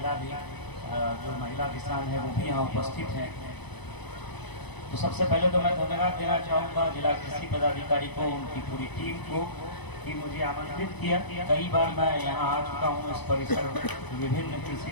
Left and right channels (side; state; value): right; late; 0.99 ms